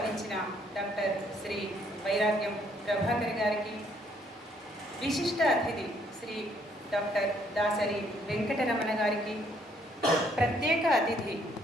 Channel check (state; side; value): normal; both; correlation 0.67